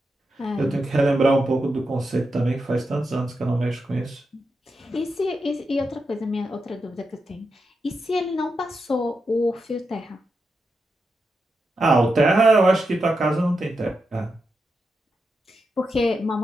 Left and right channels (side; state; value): both; normal; correlation 0.87